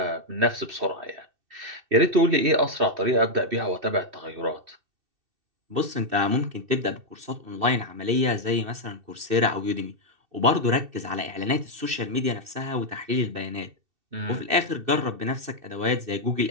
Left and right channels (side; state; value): left; late; 2.6 ms